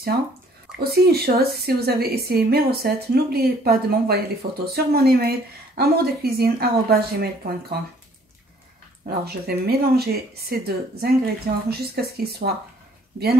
Aussi une chose, si vous avez essayé mes recettes, n'oubliez pas de m'envoyer les photos sur mon email amourdecuisine@gmail.com. Alors, je vais mélanger ces deux ingrédients jusqu'à ce qu'ils soient bien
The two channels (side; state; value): both; normal; correlation 0.59